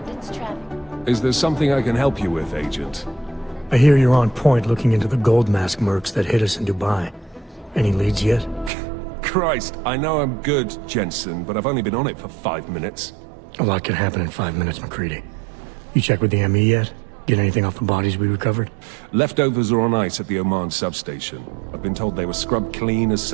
traffic. Is there something I can help you with, Agent? I hear you're on point looking into the gold mask mercs that hit us in Dubai. Any leads yet? Christ, I know I'm good, Jensen, but I've only been on it for 5 minutes. A lot can happen in 5 minutes, McCready. You check with the ME yet? Get anything off the bodies we recovered? Leftovers are on ice at the Oman substation. I've been told they were scrubbed clean as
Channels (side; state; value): left; drops out; at 8.7 s